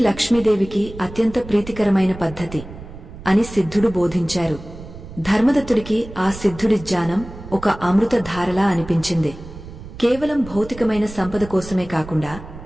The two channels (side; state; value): right; noise; rumble, 15 dB below the sound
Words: లక్ష్మీదేవికి అత్యంత ప్రీతికరమైన పద్ధతి అని సిద్ధుడు బోధించారు. ధర్మదత్తుడికి ఆ సిద్ధుడి జ్ఞానం ఒక అమృత ధారలా అనిపించింది. కేవలం భౌతికమైన సంపద కోసమే కాకుండా